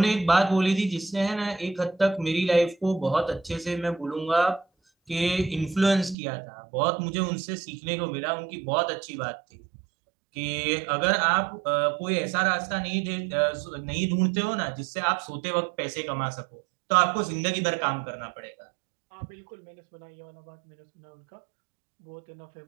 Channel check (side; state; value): left; drops out; at 6.2 s